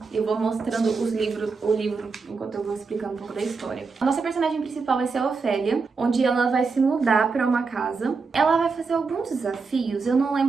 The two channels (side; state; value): left; quieter; 4.6 dB